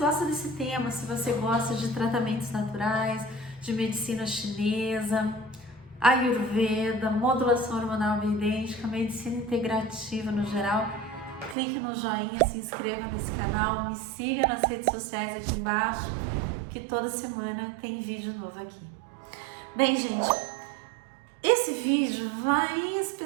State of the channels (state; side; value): drops out; left; at 11.6 s